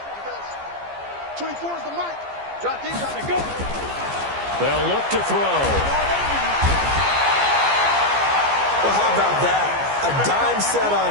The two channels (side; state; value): left; late; 14 ms